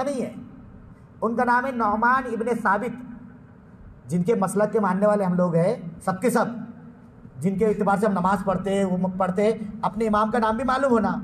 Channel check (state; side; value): identical; both; correlation 1.00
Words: نہیں ہے، ان کا نام ہے نعمان ابن ثابت۔ جن کے مسلک کے ماننے والے ہم لوگ ہیں سب کے سب، جن کے اعتبار سے ہم نماز پڑھتے ہیں، وہ پڑھتے ہیں، اپنے امام کا نام بھی معلوم ہونا،